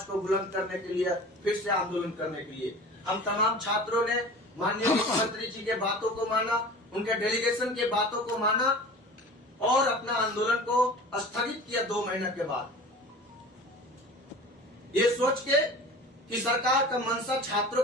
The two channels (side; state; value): both; normal; correlation 0.39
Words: को बुलंद करने के लिए, फिर से आंदोलन करने के लिए। हम तमाम छात्रों ने माननीय मुख्यमंत्री जी के बातों को माना, उनके डेलीगेशन के बातों को माना और अपना आंदोलन को स्थगित किया 2 महीने के बाद, ये सोच के कि सरकार का मंशा छात्रों